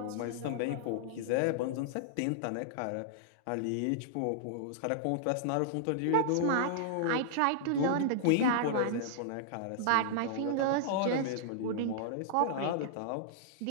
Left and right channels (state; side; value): different; both; correlation -0.01